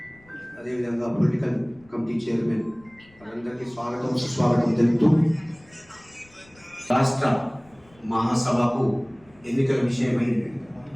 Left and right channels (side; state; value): left; noise; rumble, 29 dB below the sound